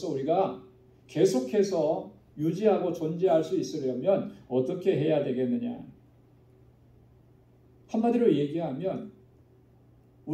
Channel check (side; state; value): both; identical; correlation 1.00